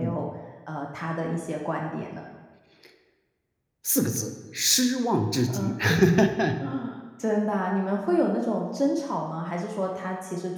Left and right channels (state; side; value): identical; both; correlation 1.00